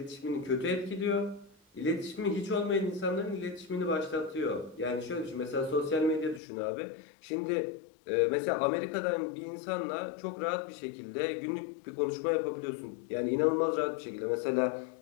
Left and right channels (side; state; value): right; drops out; at 6.4 s